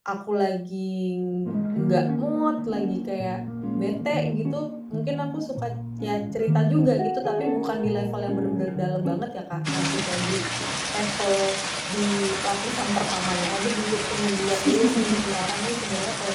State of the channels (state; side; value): identical; both; correlation 1.00